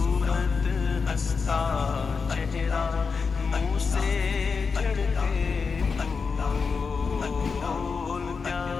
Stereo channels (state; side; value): quieter; right; 5.1 dB